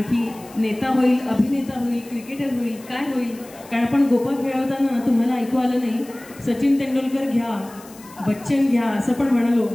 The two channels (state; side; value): noise; left; hiss, 22 dB below the sound